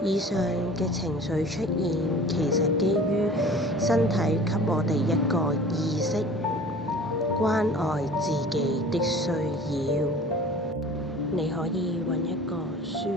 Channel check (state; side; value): normal; both; correlation 0.44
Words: 以上嘅情緒出現，其實基於身體給我哋一個意識，關愛自己的需要。你可以揾一個舒